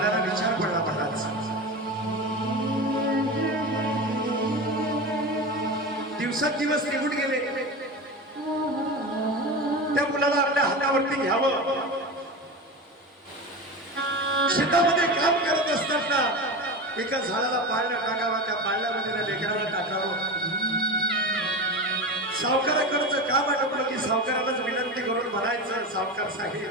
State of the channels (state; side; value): normal; both; correlation 0.26